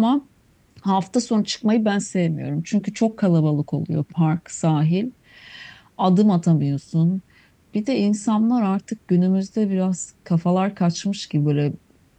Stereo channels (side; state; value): both; identical; correlation 1.00